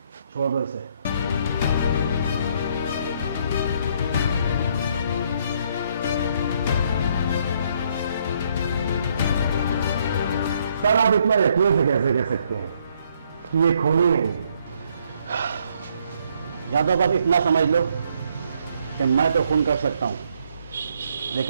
छोड़ दो इसे। सर, आप इतना यकीन से कैसे कह सकते हैं कि ये खूनी नहीं है? यादव, आप इतना समझ लो कि मैं तो खून कर सकता हूं,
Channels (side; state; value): both; inverted; correlation -0.70